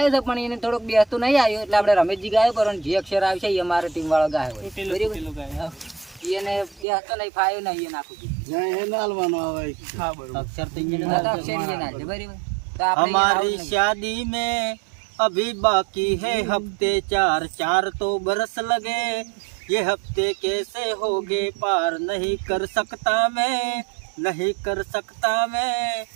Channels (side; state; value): left; drops out; at 6.9 s